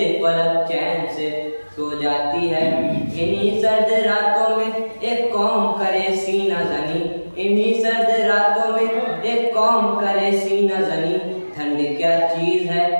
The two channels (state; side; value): inverted; both; correlation -1.00